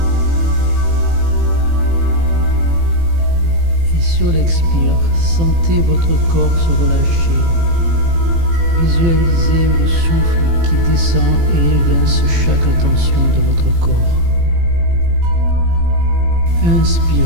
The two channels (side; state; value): left; late; 18 ms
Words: Et sur l'expire, sentez votre corps se relâcher. Visualisez le souffle qui descend et évince chaque tension de votre corps.